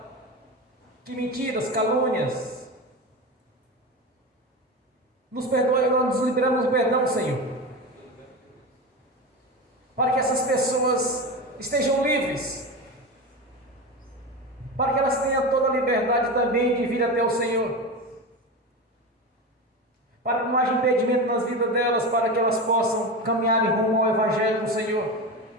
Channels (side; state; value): both; normal; correlation 0.23